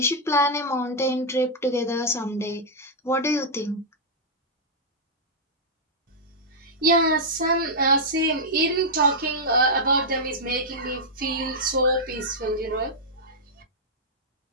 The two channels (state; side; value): normal; both; correlation -0.07